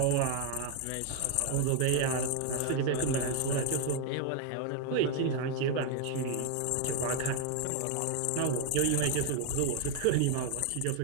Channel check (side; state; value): both; different; correlation 0.01